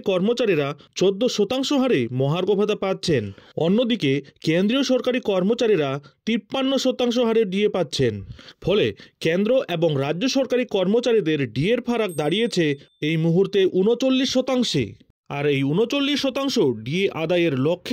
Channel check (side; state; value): both; identical; correlation 1.00